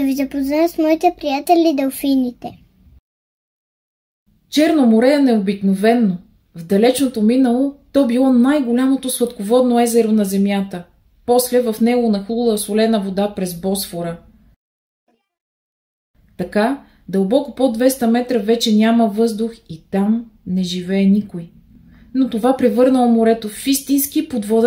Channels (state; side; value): identical; both; correlation 1.00